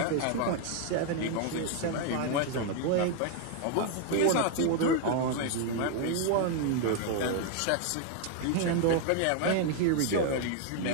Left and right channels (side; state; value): both; different; correlation 0.00